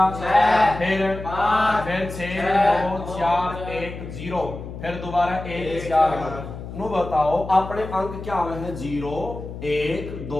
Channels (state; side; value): noise; left; hum, 10 dB below the sound